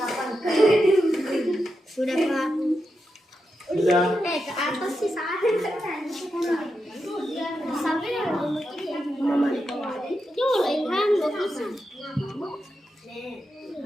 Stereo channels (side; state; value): both; normal; correlation 0.87